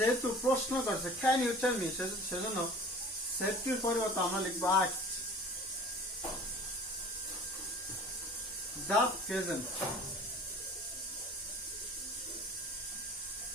প্রশ্ন করছে ক্যান ইউ টেল মি, সেজন্য সেফটির পরিবর্তে আমরা লিখবো asked the peasant.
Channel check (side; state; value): both; normal; correlation 0.44